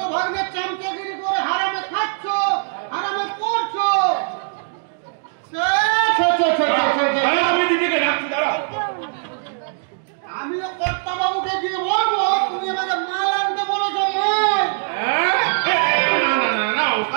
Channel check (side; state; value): left; silent; digital silence